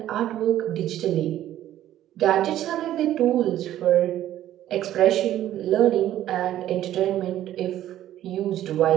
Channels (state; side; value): quieter; left; 12.7 dB